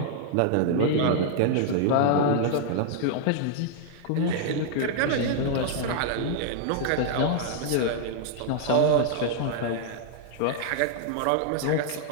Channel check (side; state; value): both; different; correlation -0.01